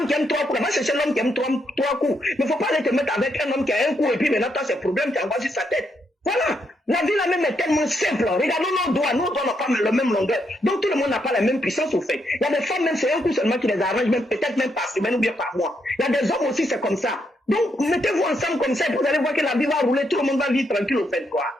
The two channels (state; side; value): normal; both; correlation 0.78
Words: qui aime 3 coups, va chercher l'homme qui aime 3 coups. Mais il ne faut pas aller te mettre avec un homme qui a un coup et puis maintenant tu as ces problèmes, tu envoies sur sa tête. Voilà. La vie là même est tellement simple. Regardons nos doigts n'ont pas la même longueur. Donc tout le monde n'a pas la même puissance au fait. Il y a des femmes même, c'est un coup seulement qui les arrange, même peut-être même par semaine ou bien par mois. Il y a des hommes aussi, c'est comme ça. Donc, mettez-vous ensemble comme ça, vous allez voir que la vie va rouler, tout le monde va vivre tranquille au fait, quoi.